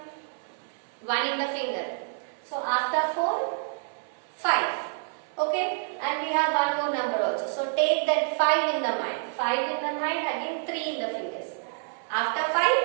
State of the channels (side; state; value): left; silent; 59 dB below the other